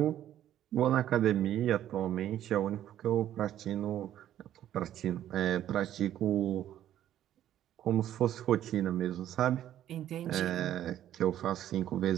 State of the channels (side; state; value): left; quieter; 11.7 dB